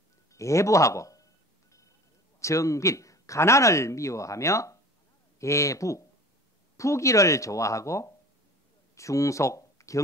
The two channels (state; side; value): normal; both; correlation 0.41